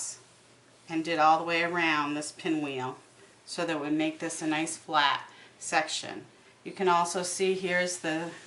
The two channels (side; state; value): both; identical; correlation 1.00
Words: and did all the way around this pinwheel so that it would make this a nice flat section. You can also see here's the